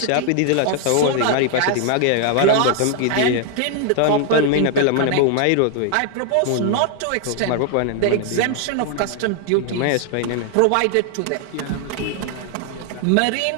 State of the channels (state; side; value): different; both; correlation 0.00